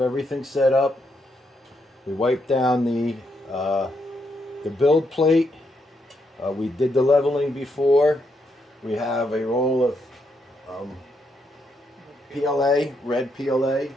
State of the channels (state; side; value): normal; both; correlation 0.78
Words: everything set up. We wiped down the build plate. We did the leveling before. We have a roll of PLA, red PLA,